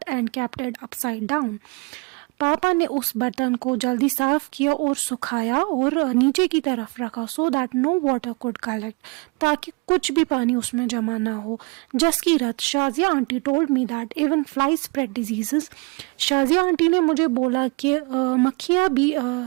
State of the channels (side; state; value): left; quieter; 28.3 dB